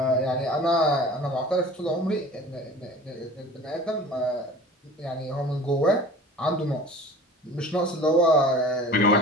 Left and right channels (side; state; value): both; normal; correlation 0.42